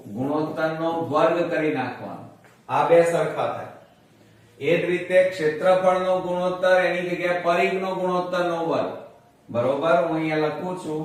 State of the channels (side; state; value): both; identical; correlation 1.00